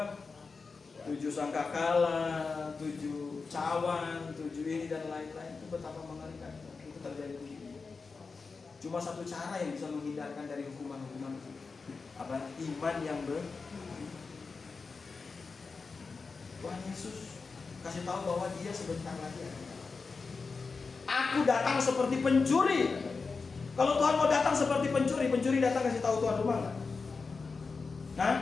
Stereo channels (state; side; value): quieter; right; 4.5 dB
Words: sangkakala, 7 cawan, 7 ini dan lain-lain. Itu betapa mengerikan itu terjadi begini. Cuma satu cara yang bisa menghindarkan dari hukuman-hukuman itu, apa? Iman yang Tuhan Yesus kasih tahu bahwa dia sebentar lagi akan datang. Aku datang seperti pencuri. Kalau Tuhan mau datang seperti pencuri datang kasih tahu tuan rumah nggak?